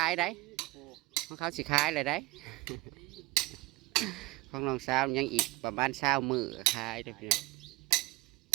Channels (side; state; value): left; quieter; 21.9 dB